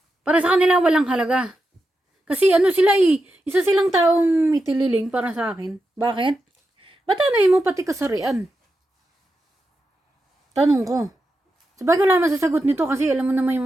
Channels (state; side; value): normal; both; correlation 0.88